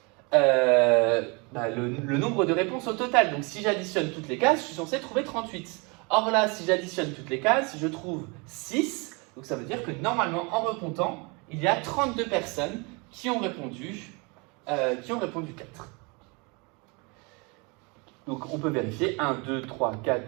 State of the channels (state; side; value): quieter; left; 30.1 dB